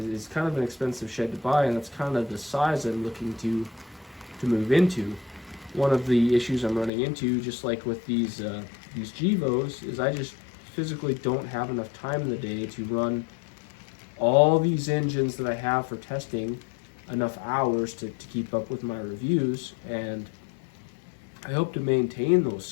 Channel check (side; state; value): right; drops out; at 6.9 s